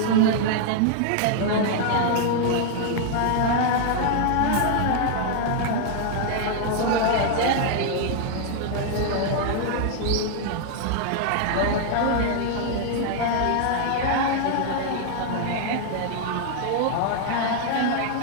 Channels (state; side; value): different; both; correlation 0.00